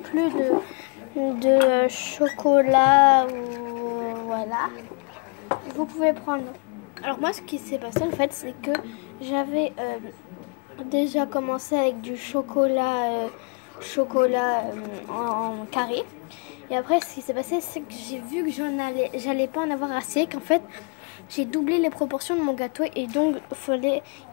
de chocolat, voilà, vous pouvez prendre. Alors moi ce qui s'est passé en fait c'est que j'avais déjà commencé avec du chocolat en carré. Et après ce qui s'est passé c'est que j'ai vu que j'allais pas en avoir assez, qu'en fait j'ai doublé les proportions de mon gâteau et donc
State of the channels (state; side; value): quieter; right; 33.6 dB